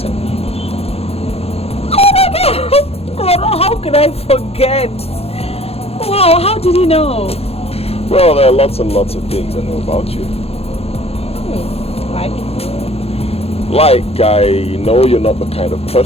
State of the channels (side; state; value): right; late; 0.29 ms